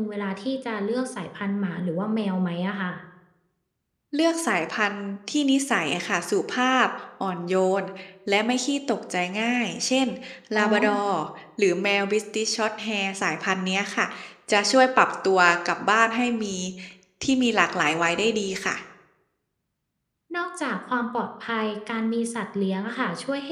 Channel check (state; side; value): identical; both; correlation 1.00